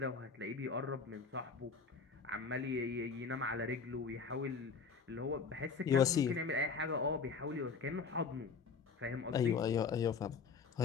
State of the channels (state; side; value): quieter; right; 5.3 dB